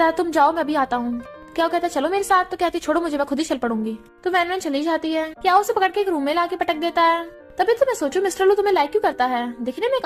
है तुम जाओ मैं भी आता हूँ। क्या कहता है चलो मेरे साथ, तो कहती छोड़ो मुझे मैं खुद ही चल पड़ूंगी। तो वैन चली जाती है। क्या उसे पकड़ के एक रूम में लाके पटक देता है। तभी तो मैं सोचूं मिस्टर लू तुम्हें लाइक क्यों करता है, दिखने में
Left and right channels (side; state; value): both; identical; correlation 1.00